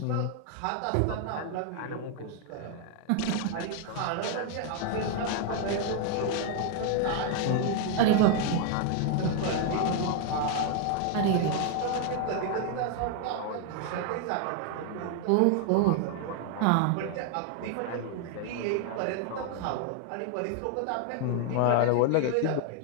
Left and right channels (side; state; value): both; different; correlation 0.00